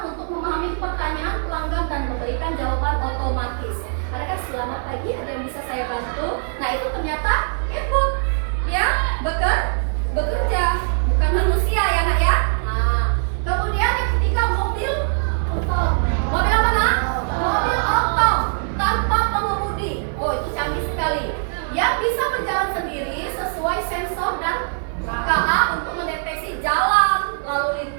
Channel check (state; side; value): silent; left; digital silence